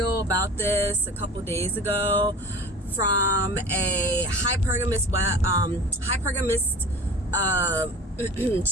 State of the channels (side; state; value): both; normal; correlation 0.39